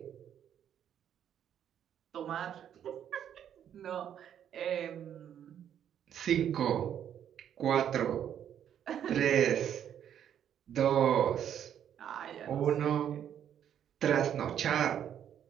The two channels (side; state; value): left; quieter; 9.6 dB